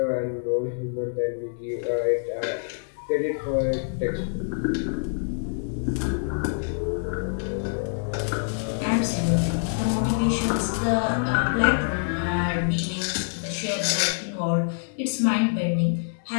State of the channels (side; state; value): right; silent; digital silence